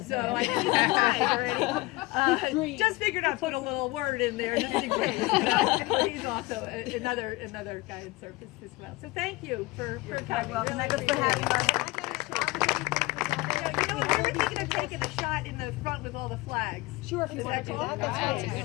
So I think he's applied already. Just figured I'd put a little word in there just in case. But he's also another guy in service as well. So thank you for coming. Welcome. Really Thank you for having us. Can I get a shot of anything? we were thinking of taking a shot in the front with all the flags. Sure, if you Is want that to do cool? that, that's fine.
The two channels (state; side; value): quieter; right; 21.8 dB